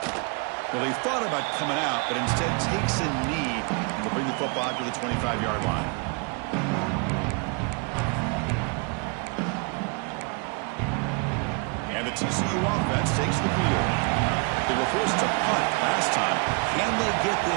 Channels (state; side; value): quieter; left; 34.6 dB